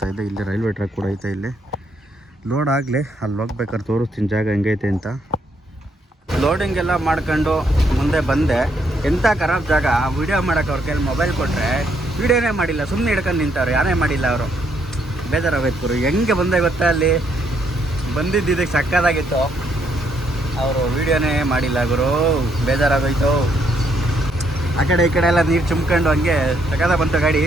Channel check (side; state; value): both; normal; correlation 0.73